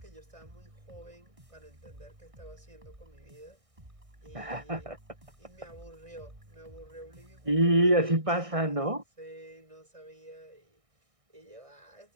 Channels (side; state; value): left; late; 1.6 ms